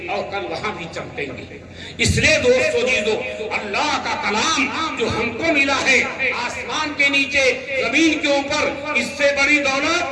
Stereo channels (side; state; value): both; identical; correlation 1.00